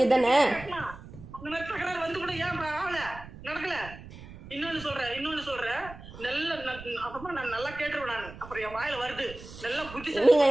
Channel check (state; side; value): noise; right; rumble, 15 dB below the sound